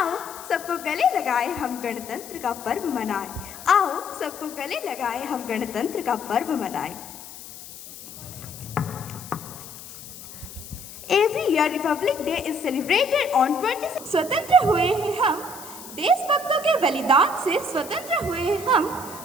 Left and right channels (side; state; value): left; noise; hiss, 14 dB below the sound